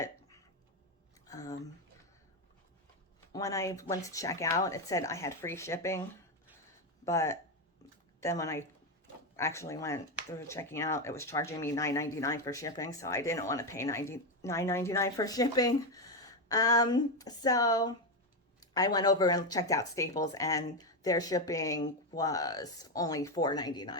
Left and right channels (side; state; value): both; normal; correlation 0.09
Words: when I went to check out, it said I had free shipping. But then when I actually went through checking out, it was charging me $9.99 for shipping. So I didn't want to pay $9.99 for shipping. So I went over and checked out Staples, and their shipping was only